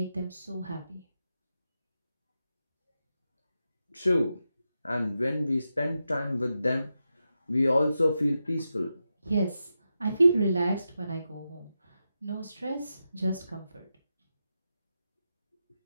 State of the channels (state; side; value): inverted; both; correlation -0.89